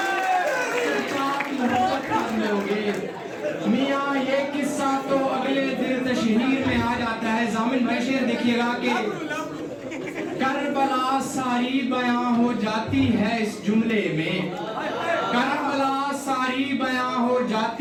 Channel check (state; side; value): identical; both; correlation 1.00